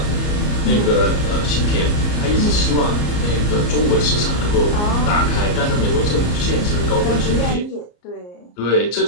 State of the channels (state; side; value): late; right; 34 ms